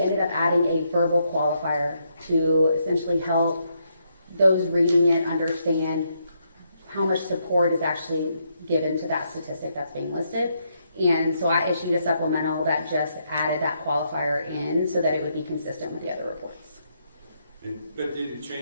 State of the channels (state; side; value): inverted; both; correlation -0.77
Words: ended up adding a verbal qualifier to essentially help those reading it understand how much support is actually given to that statistic that's being listed. And so I issued a supplemental that just added that qualifier in so that it would be consistent with the other reports. But did it